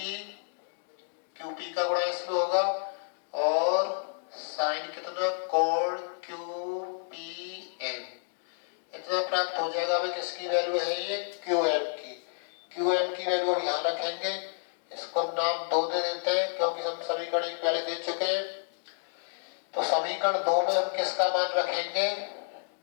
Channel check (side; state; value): right; silent; digital silence